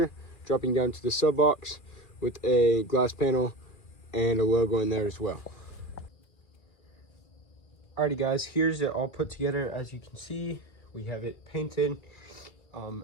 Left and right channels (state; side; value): late; right; 2.4 ms